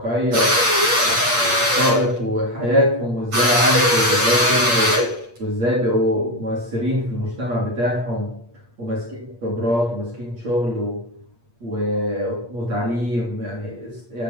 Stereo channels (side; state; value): left; late; 8.5 ms